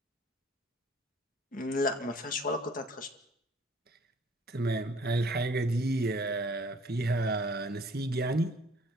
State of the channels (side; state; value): both; normal; correlation 0.55